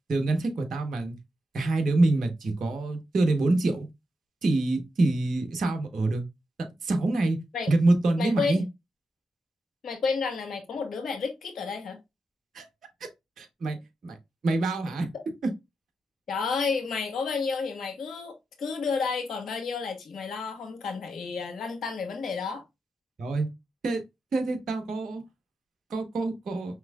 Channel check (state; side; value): normal; both; correlation 0.87